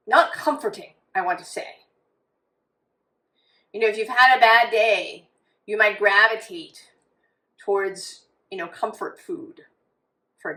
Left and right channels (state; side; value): identical; both; correlation 1.00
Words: comforting, I want to say. If you've had a bad day, you might gravitate towards, comfort food, for